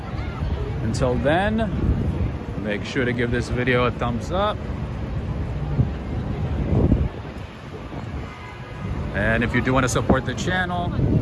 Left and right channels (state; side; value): identical; both; correlation 1.00